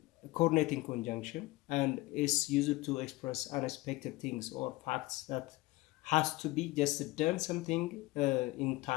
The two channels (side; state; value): right; quieter; 20.4 dB